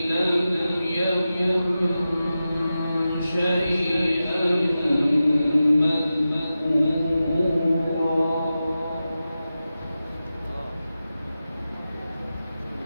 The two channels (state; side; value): inverted; both; correlation -0.93